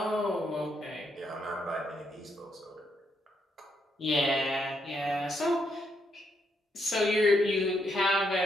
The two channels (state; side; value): normal; both; correlation 0.77